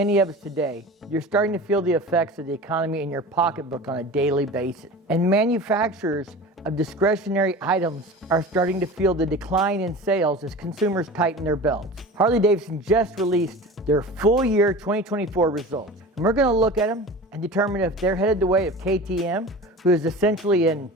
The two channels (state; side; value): normal; both; correlation 0.35